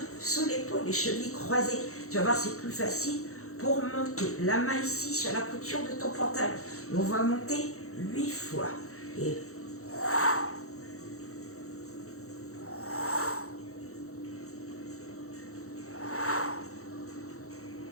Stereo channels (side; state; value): right; late; 0.64 ms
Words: sous l'épaule, les chevilles croisées. Tu vas voir, c'est plus facile pour monter. La main ici sur la couture de ton pantalon. Et on va monter 8 fois. Et